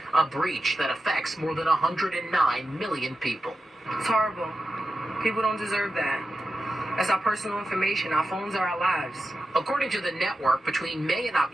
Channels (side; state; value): both; normal; correlation 0.91